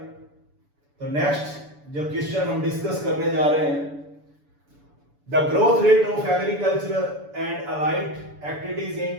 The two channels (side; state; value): left; late; 7.0 ms